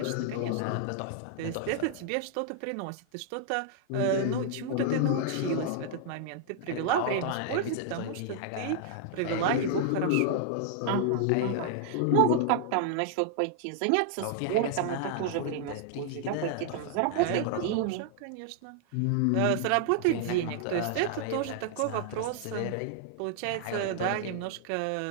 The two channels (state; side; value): different; both; correlation 0.00